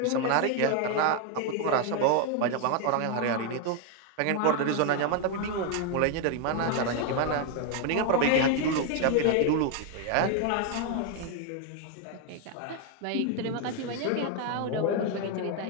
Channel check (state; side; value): different; both; correlation 0.01